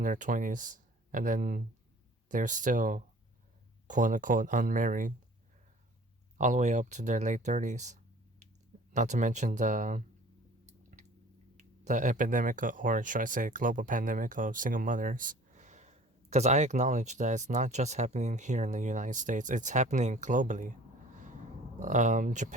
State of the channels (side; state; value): both; normal; correlation 0.48